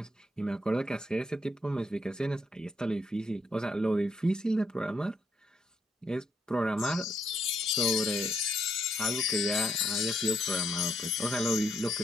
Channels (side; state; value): both; normal; correlation 0.75